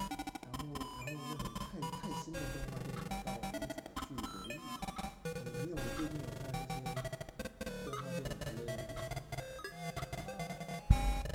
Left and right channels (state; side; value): identical; both; correlation 1.00